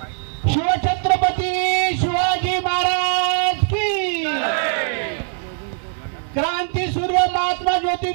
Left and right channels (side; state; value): left; silent; 63 dB below the other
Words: शिवछत्रपती शिवाजी महाराज की जय। क्रांतीसूर्य महात्मा